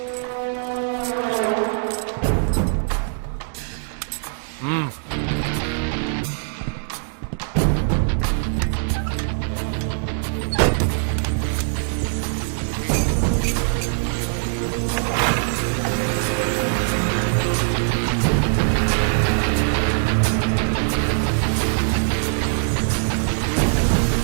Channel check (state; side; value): silent; left; digital silence